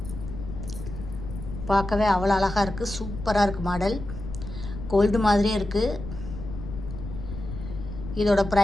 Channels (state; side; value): noise; left; rumble, 9 dB below the sound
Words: பார்க்கவே அவ்வளோ அழகாக இருக்குது, சூப்பராக இருக்குது. மாடல் கோல்டு மாதிரியே இருக்குது. இதோட